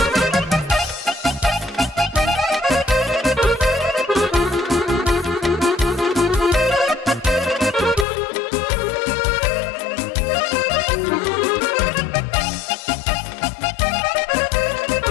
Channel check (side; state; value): right; drops out; at 8.1 s